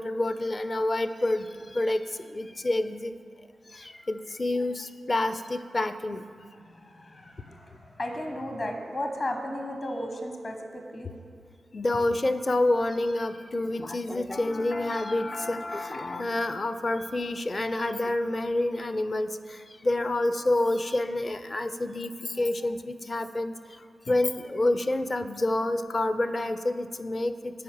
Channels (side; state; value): both; normal; correlation 0.97